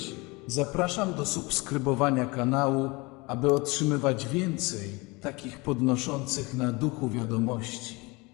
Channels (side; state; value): right; quieter; 25.4 dB